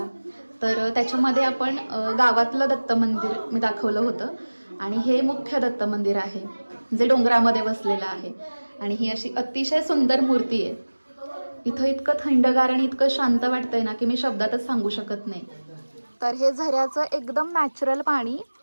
तर त्याच्यामध्ये आपण गावातलं दत्त मंदिर मी दाखवलं होतं. आणि हे मुख्य दत्त मंदिर आहे जे डोंगरामध्ये वसलेलं आहे. आणि ही अशी अतिशय सुंदर मूर्ती आहे. इथं इतकं थंडगार आणि इतकं शांत वाटतंय ना की मी शब्दातच सांगू शकत नाही. तर हे झऱ्याचं एकदम नॅचरल पाणी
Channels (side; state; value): both; inverted; correlation -1.00